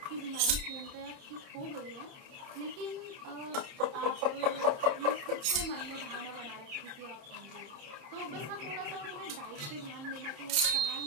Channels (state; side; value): late; left; 30 ms